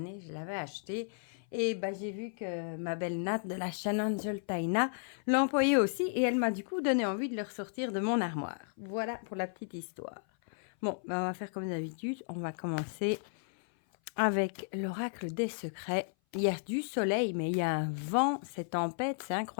Je l'avais acheté. Et bah, j'ai vu que ma belle Nat de la chaîne Angel Taina l'employait aussi. Et elle m'a du coup donné envie de le ressortir de mon armoire. Voilà pour la petite histoire. Bon, bah, on va faire comme d'habitude. On va commencer avec l'oracle des secrets. Il y a du soleil, mais il y a un vent. C'est tempête, c'est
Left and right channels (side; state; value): right; silent; 55 dB below the other